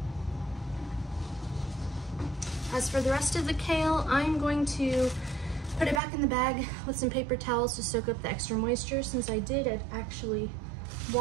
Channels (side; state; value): left; drops out; at 6.0 s